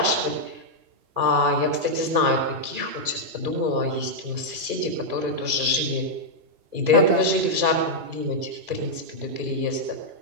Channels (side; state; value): left; late; 2.4 ms